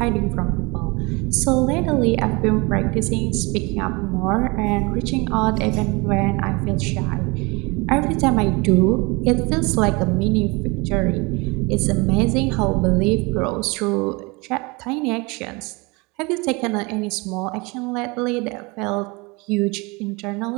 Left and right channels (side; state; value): left; quieter; 26.6 dB